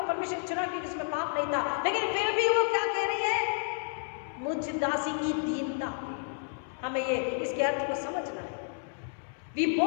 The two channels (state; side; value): silent; right; 57 dB below the other